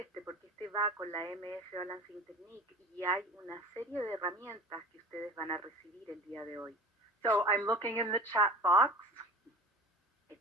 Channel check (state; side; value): normal; both; correlation 0.39